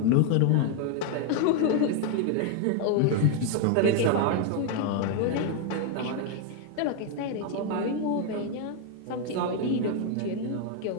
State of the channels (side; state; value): both; different; correlation 0.01